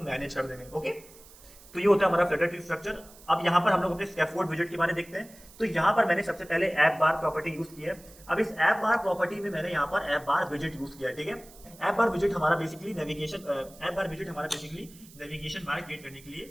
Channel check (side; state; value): right; noise; hiss, 22 dB below the sound